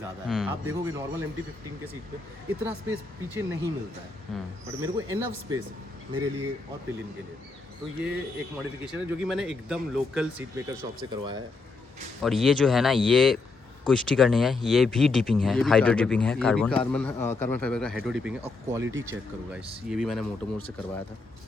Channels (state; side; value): quieter; right; 3.8 dB